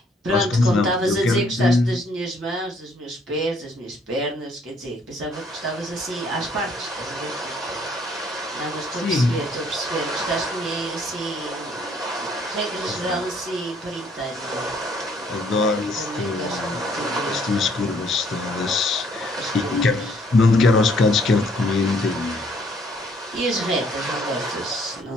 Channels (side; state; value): both; normal; correlation 0.64